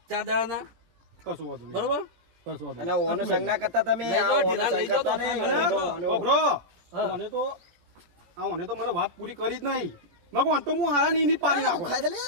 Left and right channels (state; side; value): late; left; 17 ms